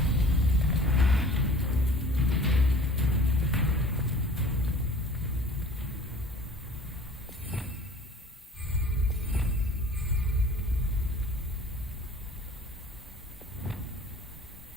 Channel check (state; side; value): normal; both; correlation 0.47